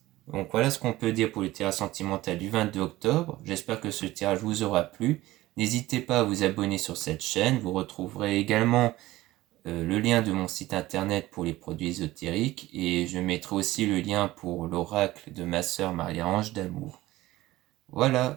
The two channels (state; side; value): quieter; left; 17.3 dB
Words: Donc voilà ce qu'on peut dire pour le tirage sentimental du 22 octobre. J'espère que ce tirage vous aura plu. N'hésitez pas à vous abonner sur cette chaîne. Vous retrouverez également le lien de mon site internet pour les produits ésotériques. Et je mettrai aussi le lien pour l'oracle de ma sœur Marie-Ange d'Amour. Voilà,